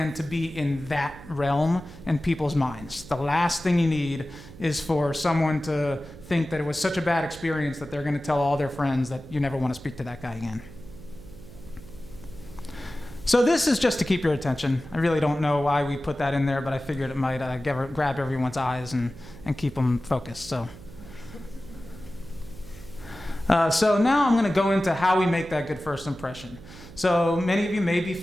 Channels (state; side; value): noise; right; hum, 17 dB below the sound